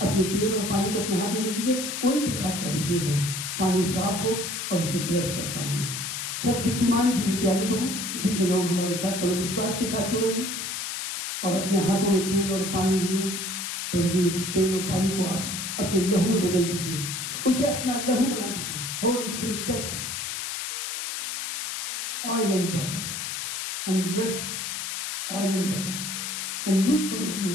अपने तेल और पानी को अपने हाथ में ले लीजिए, कोई प्रकार का भी तेल हो, पानी साफ हो, और उसे ब्लेस करता हूँ मैं। सर्वशक्तिमान जीवित दयालु प्रभु, जितने लोग हमारे साथ बड़े विश्वास के साथ जुड़े हैं और अपने हाथों में तेल और पानी लिए, प्रभु जी उस तेल और पानी को आप अपने लहू में बदल दीजिए, उसे अपना लहू बना दीजिए। Holi spirit touch oil and water and bless oil and water and use for your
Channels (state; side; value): noise; left; hiss, 4 dB below the sound